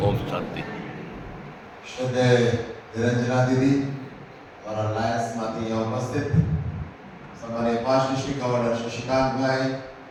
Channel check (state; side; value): identical; both; correlation 1.00